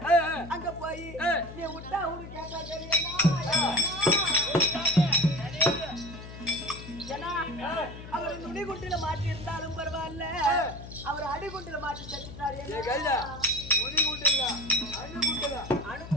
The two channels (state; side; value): noise; left; hum, 13 dB below the sound